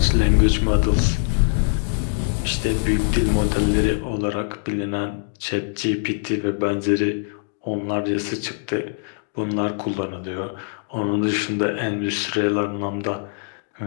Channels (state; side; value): silent; right; digital silence